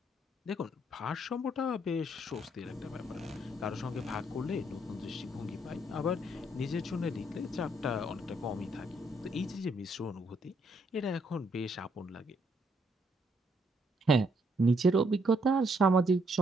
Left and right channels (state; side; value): normal; both; correlation 0.72